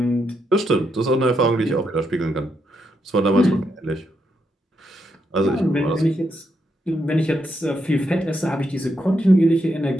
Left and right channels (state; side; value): normal; both; correlation 0.80